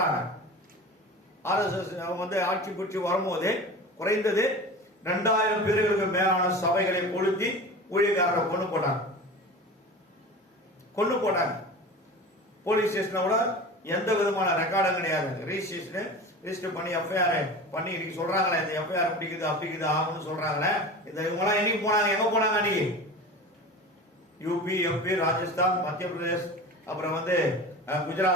RSS ஆட்சி பிடிச்சி வரும்போது குறைந்தது 2000 பேர்களுக்கு மேலான சபைகளை கொளுத்தி ஊழியக்காரரை கொண்டு போட்டாங்க. போலீஸ் ஸ்டேஷனோட எந்த விதமான ரெக்கார்டும் கிடையாது. ரிஜிஸ்டர் பண்ணி எஃப்ஐஆர் பண்ணி இன்னைக்கு சொல்றாங்களே, இந்த எஃப்ஐஆர் அப்படிக்குது ஆகும்னு சொல்றாங்களே. இந்த இவங்கெல்லாம் என்னைக்கு போனாங்க, எங்க போனாங்க அன்னைக்கு? யூபி, எம்பி, ராஜஸ்தான், மத்திய பிரதேஷ், அப்புறம்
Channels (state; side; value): normal; both; correlation 0.34